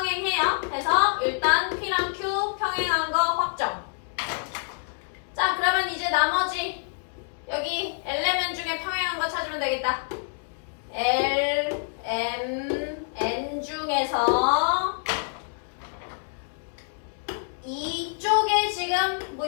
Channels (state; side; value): silent; right; 60 dB below the other